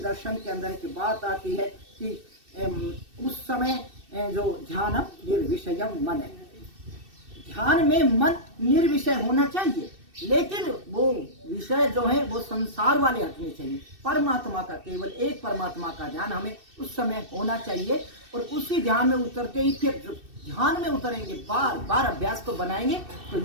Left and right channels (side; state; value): left; late; 2.6 ms